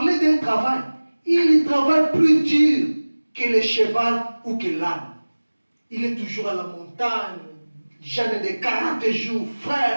d'un travail, il travaille plus dur que le cheval ou que l'âne. Il est toujours à la montagne, jeûne de 40 jours.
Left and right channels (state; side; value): inverted; both; correlation -1.00